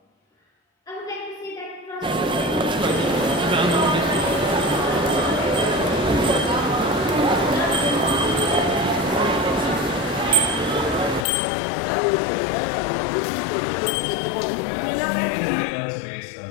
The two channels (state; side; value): drops out; right; at 11.2 s